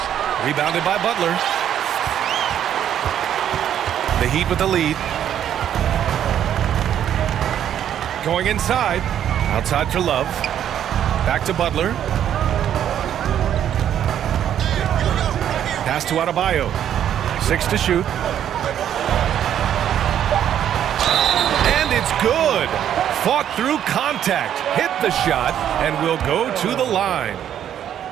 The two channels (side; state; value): left; quieter; 10.1 dB